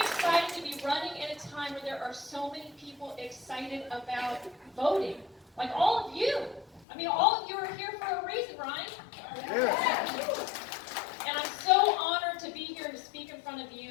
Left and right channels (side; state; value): right; drops out; at 6.9 s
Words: to be running at a time where there are so many people excited about voting. Like all of you. I mean, all of you are here for a reason, Ryan. And I'm so honored to be here and to speak in front of